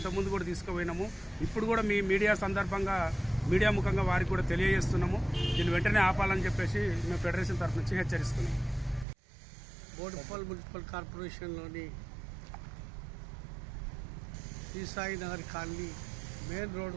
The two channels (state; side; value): drops out; left; at 9.1 s